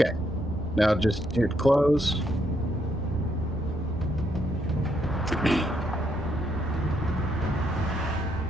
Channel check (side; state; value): both; normal; correlation 0.75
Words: Now just hit close.